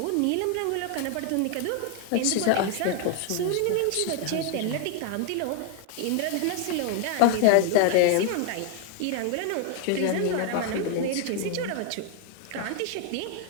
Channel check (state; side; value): different; both; correlation 0.00